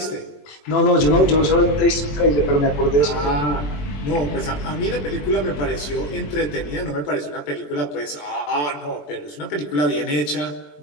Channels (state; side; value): late; right; 20 ms